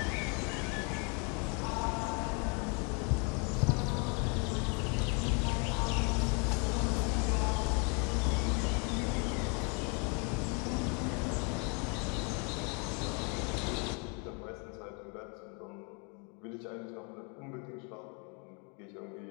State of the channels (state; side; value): quieter; right; 33.7 dB